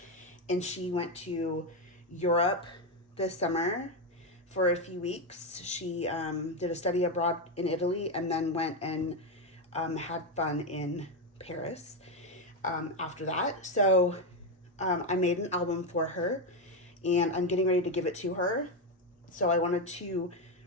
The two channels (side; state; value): both; normal; correlation 0.08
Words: and she went to Europe this summer for a few weeks. She did a study abroad in Italy and then went and had fun in Paris after that. So I made an album for her and I'm getting ready to give it to her. So I wanted to